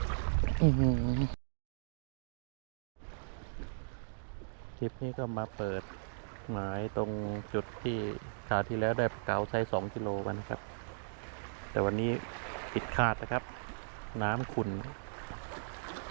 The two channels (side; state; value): left; silent; digital silence